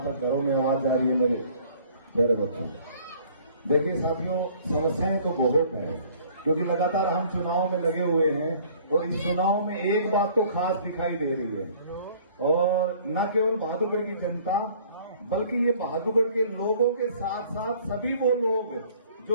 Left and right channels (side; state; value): both; inverted; correlation -0.55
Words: तक घरों में आवाज जा रही है मेरे प्यारे बच्चों। देखिए साथियों, समस्याएं तो बहुत है क्योंकि लगातार हम चुनाव में लगे हुए हैं और इस चुनाव में एक बात तो खास दिखाई दे रही है और न केवल बहादुरगढ़ की जनता बल्कि ये बहादुरगढ़ के लोगों के साथ साथ सभी वो लोग